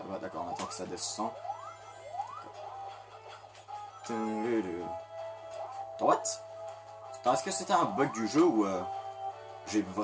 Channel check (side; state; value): both; identical; correlation 1.00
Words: va, d'accord. On attend que ça descend. Droite. Est-ce que c'était un bug du jeu ou j'ai